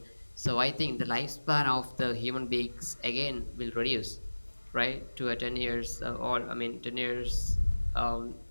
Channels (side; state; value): both; inverted; correlation -1.00